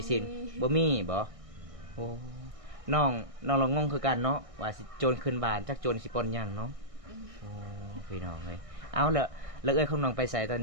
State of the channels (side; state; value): left; late; 1.6 ms